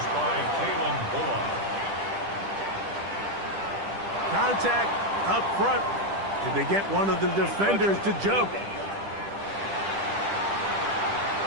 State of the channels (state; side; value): late; left; 10 ms